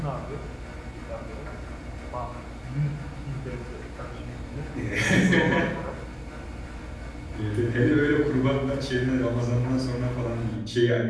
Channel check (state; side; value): identical; both; correlation 1.00